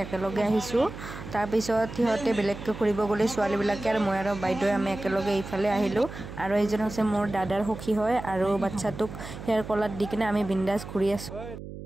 একেলগে আহিছো তাৰ পিছত হিহতে বেলেগকৈ ফুৰিব গলে ছোৱালী বিলাকে আৰু মই আৰু বাইদেউ আমি একেলগে এইফালে আহিলো আৰু এইজন আছে মোৰ দাদাৰ সখী হয় আৰু বাচ্চাটোক হেয়াৰ কলাৰ দি কিনে আমি বিন্দাস ঘুৰি আছো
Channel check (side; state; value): right; noise; hum, 11 dB below the sound